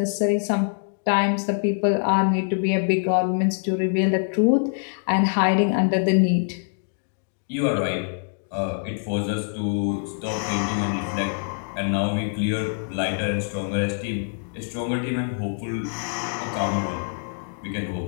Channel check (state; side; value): silent; right; digital silence